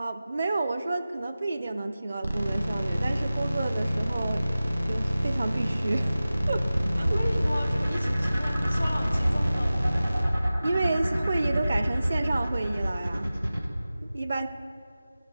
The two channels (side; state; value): both; inverted; correlation -0.96